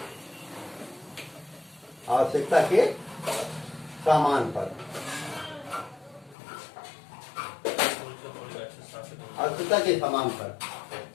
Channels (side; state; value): right; drops out; at 6.4 s